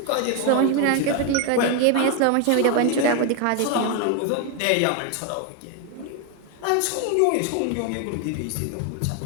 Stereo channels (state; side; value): different; both; correlation 0.01